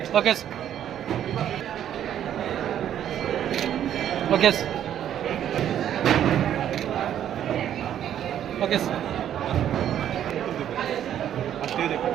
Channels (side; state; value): left; quieter; 10.4 dB